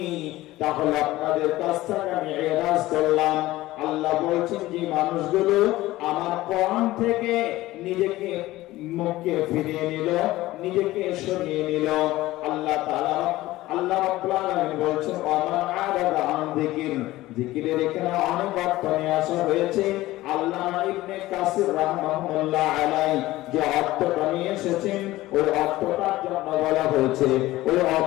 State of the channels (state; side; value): quieter; right; 17.2 dB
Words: তাহলে আপনাদের কাছ থেকে আমি এরাজ করলাম। আল্লাহ বলছেন যে মানুষগুলো আমার কোরআন থেকে নিজেকে মুখকে ফিরিয়ে নিল, নিজেকে সরিয়ে নিল, আল্লাহ তাআলা আল্লাহ রাব্বুল আলামিন বলছেন ওয়ামান আ'রাদা আন যিকর। যিকিরের এখানে অনেক অর্থ নিয়ে আসা হয়েছে। আল্লামা ইবনে কাসির রাহমাহুল্লাহ আলাইহি যে অর্থটা নিয়ে এসেছেন, ওই অর্থটার জন্য বলা হয়েছে, ওই